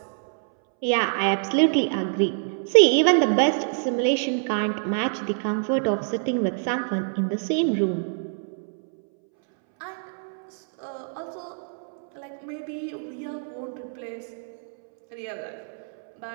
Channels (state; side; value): silent; left; 61 dB below the other